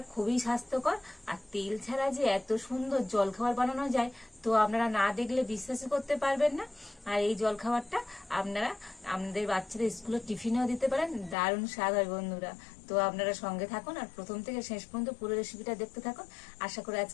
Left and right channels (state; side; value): drops out; right; at 11.4 s